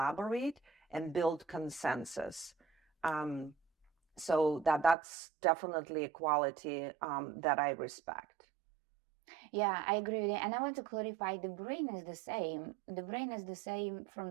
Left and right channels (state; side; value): drops out; left; at 5.0 s